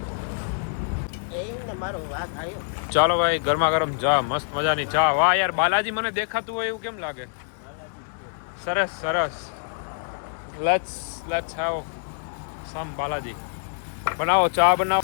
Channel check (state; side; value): silent; right; digital silence